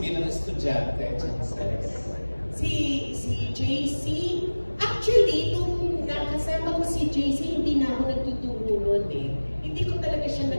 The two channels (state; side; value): inverted; both; correlation -1.00